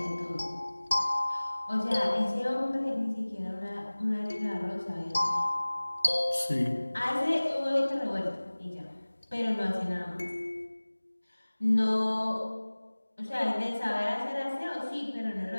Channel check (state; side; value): inverted; both; correlation -1.00